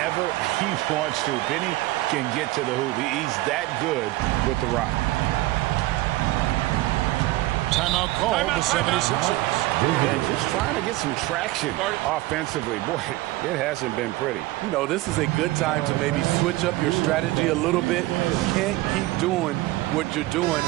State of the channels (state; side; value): quieter; left; 18.4 dB